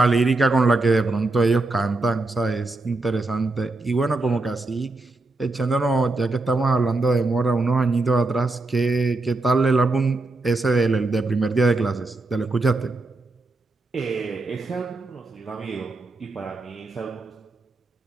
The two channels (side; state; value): left; quieter; 3.2 dB